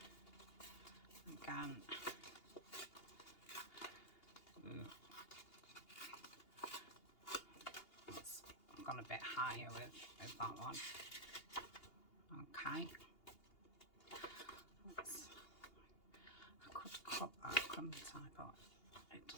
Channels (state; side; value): late; right; 2.8 ms